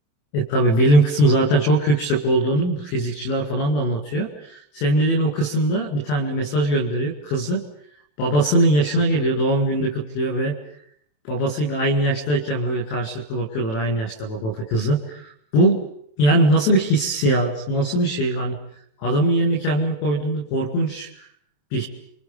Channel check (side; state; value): right; late; 28 ms